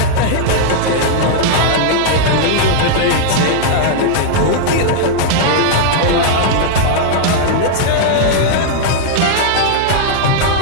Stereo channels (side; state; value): both; different; correlation -0.01